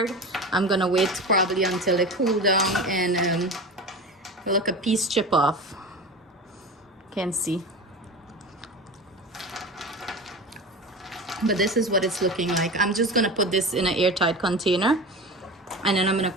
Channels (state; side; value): normal; both; correlation 0.30